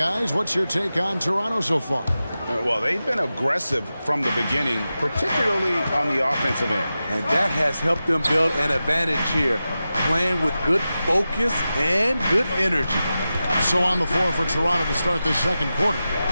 what's your take on Toronto so far? Well, they've been aggressive from the beginning, particularly on the offensive end. And that has helped them build an advantage here, playing with good focus and good energy. So on the floor for Toronto to start this second quarter.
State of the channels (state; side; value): inverted; both; correlation -0.93